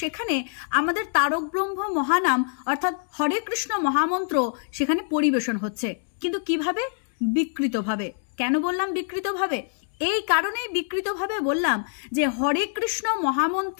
সেখানে আমাদের তারক ব্রহ্ম মহানাম অর্থাৎ হরে কৃষ্ণ মহামন্ত্র সেখানে পরিবেশন হচ্ছে। কিন্তু কিভাবে? বিকৃতভাবে। কেন বললাম বিকৃতভাবে? এই কারণেই বিকৃতভাবে বললাম যে হরে কৃষ্ণ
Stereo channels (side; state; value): right; silent; 62 dB below the other